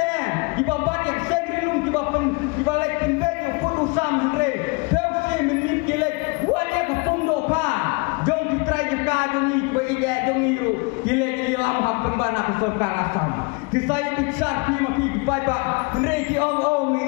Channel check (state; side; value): quieter; right; 29.7 dB